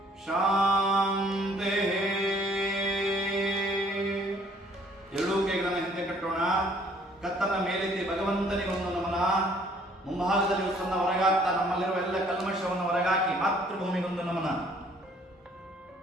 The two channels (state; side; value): normal; both; correlation 0.60